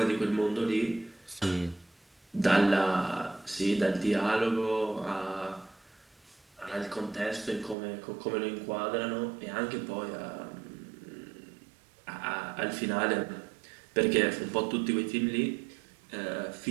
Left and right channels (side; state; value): left; drops out; at 7.8 s